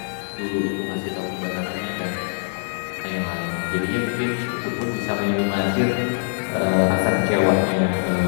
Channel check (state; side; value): silent; right; 58 dB below the other